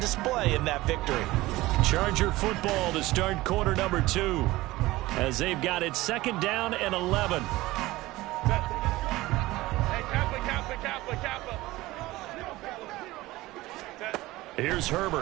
in that victory. Charger football to start quarter number 2. As they've got it 2nd down and 11. Here's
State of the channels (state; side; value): quieter; left; 18.5 dB